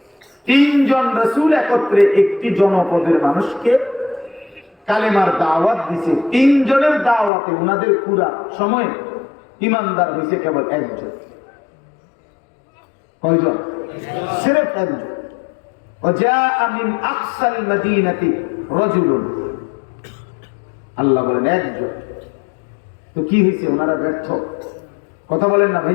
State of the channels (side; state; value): right; drops out; at 7.3 s